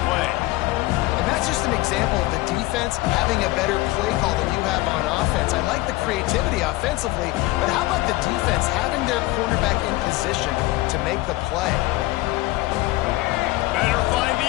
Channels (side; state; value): right; quieter; 19.4 dB